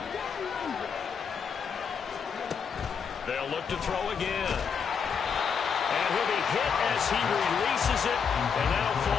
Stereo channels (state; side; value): quieter; right; 6.5 dB